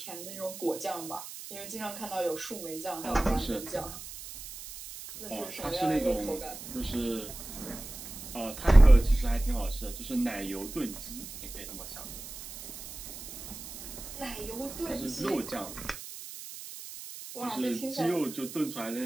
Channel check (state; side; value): noise; right; hiss, 12 dB below the sound